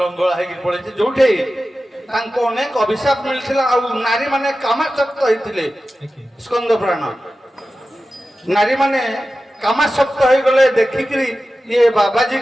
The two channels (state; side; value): normal; both; correlation 0.94